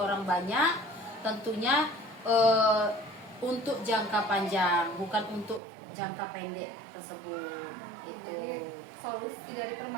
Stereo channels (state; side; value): drops out; left; at 5.6 s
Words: banyak, tentunya untuk jangka panjang, bukan untuk jangka pendek tersebut. Itu. Jadi solusi dari